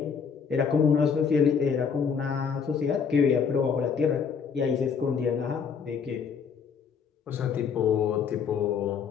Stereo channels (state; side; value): quieter; right; 6.4 dB